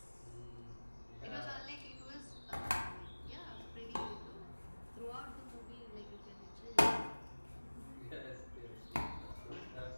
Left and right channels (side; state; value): both; inverted; correlation -1.00